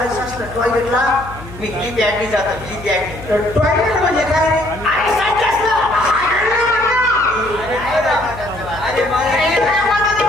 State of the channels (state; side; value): noise; left; hum, 15 dB below the sound